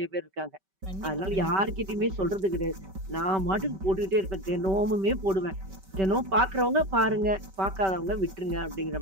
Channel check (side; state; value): left; late; 5.2 ms